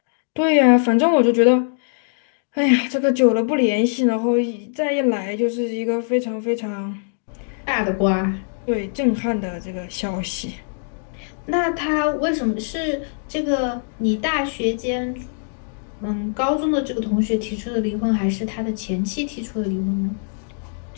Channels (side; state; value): right; silent; digital silence